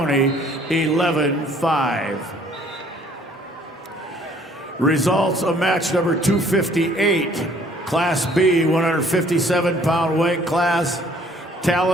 11-5. Results of match number 258, Class B, 157-pound weight class.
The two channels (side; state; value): both; normal; correlation 0.59